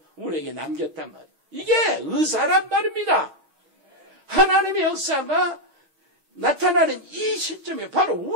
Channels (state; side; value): late; left; 6.3 ms